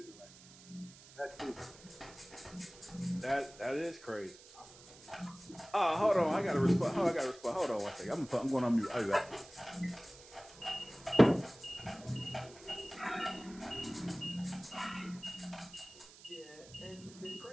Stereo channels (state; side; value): noise; right; hiss, 20 dB below the sound